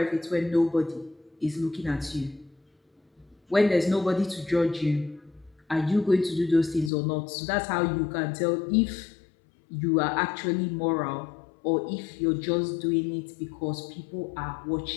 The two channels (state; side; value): drops out; right; at 6.9 s